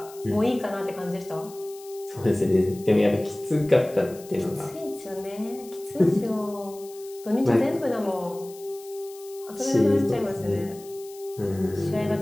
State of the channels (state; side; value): noise; left; hiss, 20 dB below the sound